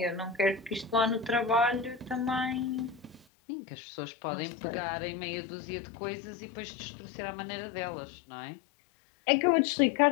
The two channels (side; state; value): right; drops out; at 3.2 s